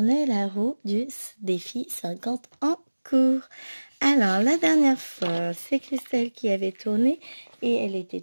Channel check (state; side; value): inverted; both; correlation -1.00